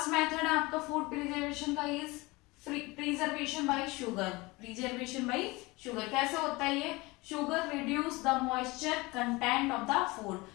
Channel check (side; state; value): right; quieter; 23.1 dB